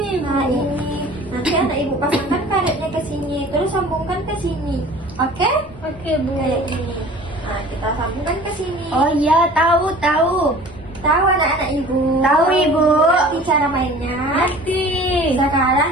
Nah ini. Nanti anak ibu pasangkan karetnya ke sini, terus sambungkan ke sini. Oke? Oke, Bu. Kayak ini. Nah, kita sambungkan ke sini. Oh iya, tahu. Tahu anak-anak ibu? Tahu, Ibu. Ngerti cara mainnya? Ngerti. Sekarang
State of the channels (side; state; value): both; normal; correlation 0.45